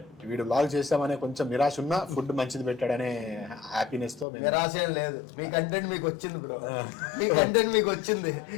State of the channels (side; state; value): right; drops out; at 4.2 s